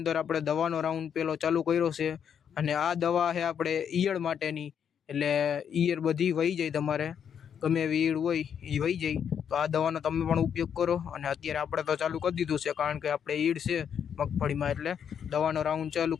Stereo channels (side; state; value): right; quieter; 8.1 dB